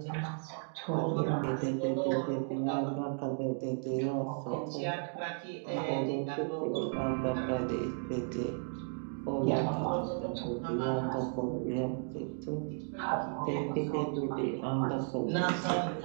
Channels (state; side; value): silent; left; 55 dB below the other